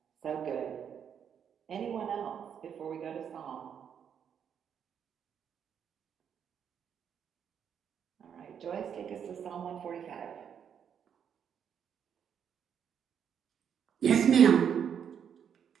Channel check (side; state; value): left; quieter; 8.1 dB